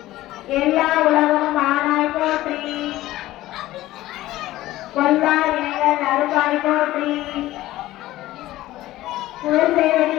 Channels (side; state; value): right; quieter; 16.0 dB